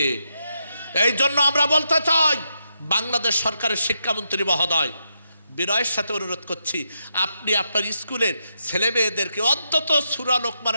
এই জন্য আমরা বলতে চাই, বাংলাদেশ সরকারের শিক্ষামন্ত্রী মহোদয়, বিনয়ের সাথে অনুরোধ করছি, আপনি আপনার স্কুলের ছেলে মেয়েদেরকে অন্তত সূরা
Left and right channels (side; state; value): both; inverted; correlation -0.82